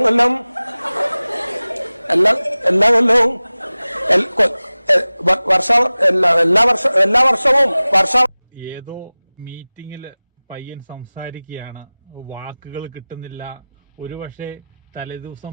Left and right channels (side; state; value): both; inverted; correlation -0.98